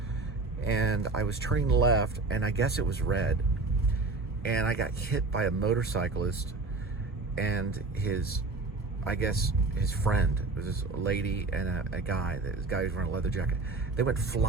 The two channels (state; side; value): quieter; left; 3.6 dB